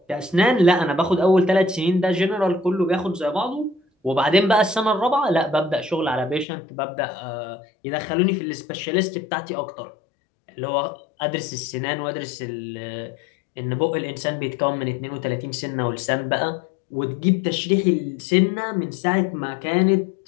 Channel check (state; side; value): drops out; right; at 6.5 s